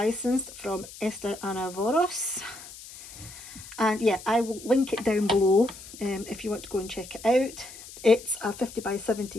from Esther Anavoros, and yeah, I will link it down below if you want to go and check it out. It's a 50 by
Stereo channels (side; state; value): left; noise; hiss, 16 dB below the sound